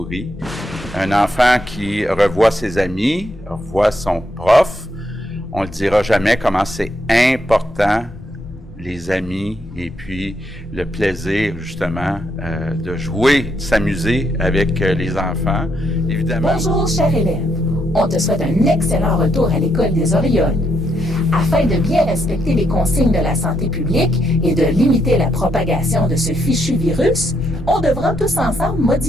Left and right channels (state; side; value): normal; both; correlation 0.76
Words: un enfant qui revoit ses amis, revoit son prof. On ne le dira jamais comment c'est important, les amis, et puis le plaisir, justement, de jouer, de s'amuser avec les enfants, évidemment. Bonjour, cher élève. On te souhaite un excellent retour à l'école des Orioles. Afin de bien respecter les consignes de la santé publique et de limiter la propagation de ce fichu virus, on devra tous ensemble